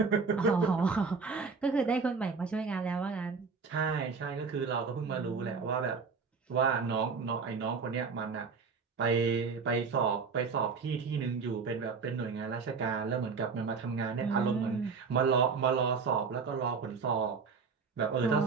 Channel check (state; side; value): quieter; left; 5.1 dB